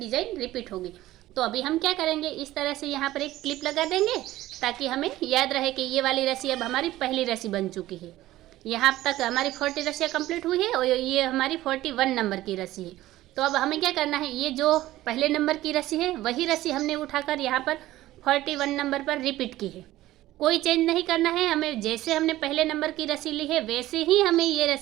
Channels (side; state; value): left; quieter; 15.7 dB